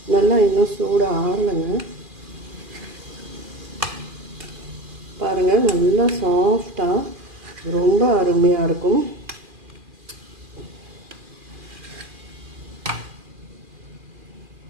நல்லா இன்னும் சூடாக ஆறலைங்க. பாருங்கள், நல்லா சாஃப்டாக ரொம்ப அருமையாக இருக்கும்.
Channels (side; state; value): left; late; 2.4 ms